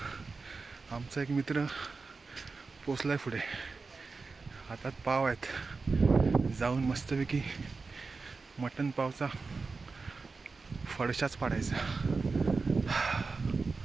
आमचा एक मित्र पोचलाय पुढे, हातात पाव आहेत. जाऊन मस्तपैकी मटण पावचा फडशाच पाडायचा.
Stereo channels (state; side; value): quieter; left; 4.2 dB